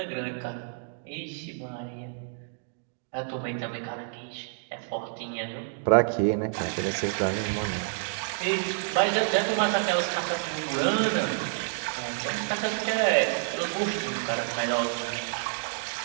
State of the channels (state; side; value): silent; left; digital silence